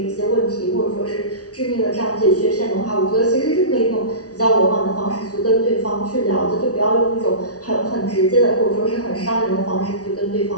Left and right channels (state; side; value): late; right; 0.67 ms